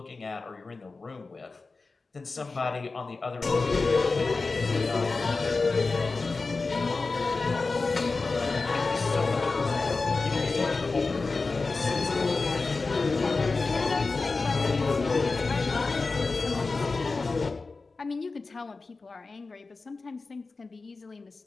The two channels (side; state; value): right; quieter; 3.9 dB